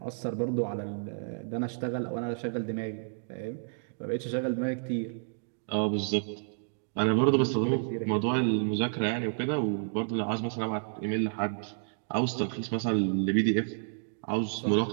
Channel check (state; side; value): silent; left; digital silence